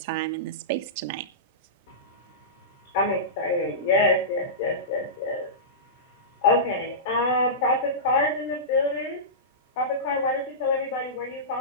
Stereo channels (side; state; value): both; normal; correlation -0.18